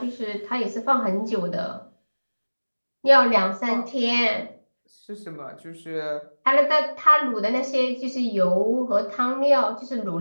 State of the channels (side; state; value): both; inverted; correlation -1.00